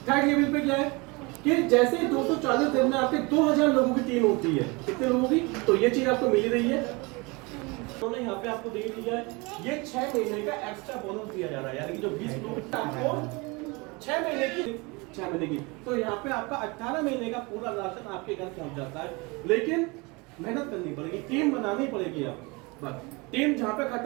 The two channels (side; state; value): left; quieter; 26.8 dB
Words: थर्ड लेवल पे क्या है कि जैसे 240 दिन में आपके 2000 लोगों की टीम होती है, कितने लोगों की, तो ये चीज आपको मिल रही है। उन्होंने यहाँ पे आपको दे दिया है, ये 6 महीने का एक्स्ट्रा बोनस दिया जा रहा है, यानी कि जो 20 लोग आपको 6 महीने की, तो यहाँ पे आपका 18 महीने का पूरा राशन आपके घर पहुंच जाता है। लेकिन मेहनत करनी पड़ेगी, टीम बनानी पड़ेगी। आप बस टीम जहाँ पे